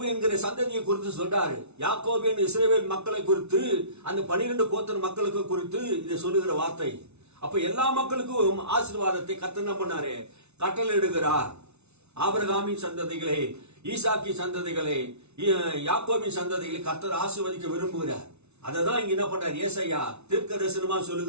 என்கிற சந்ததியை குறித்து சொல்றாரு. யாக்கோபு என்ற இஸ்ரவேல் மக்களை குறித்து, அந்த 12 கோத்திர மக்களுக்கு குறித்து இதை சொல்லுகிற வார்த்தை. அப்ப எல்லா மக்களுக்கும் ஆசீர்வாதத்தை கர்த்தர் என்ன பண்ணாரு? கட்டளையிடுகிறார். ஆபிரகாமின் சந்ததிகளை, ஈசாக்கின் சந்ததிகளை, யாக்கோபின் சந்ததிகளை கர்த்தர் ஆசீர்வதிக்க விரும்புகிறார். அததான் இங்க என்ன பண்றார்? ஏசாயா தீர்க்க தரிசனமா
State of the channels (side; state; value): left; late; 0.81 ms